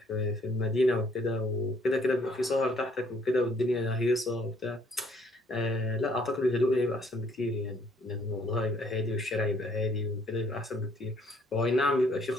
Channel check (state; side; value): normal; both; correlation 0.64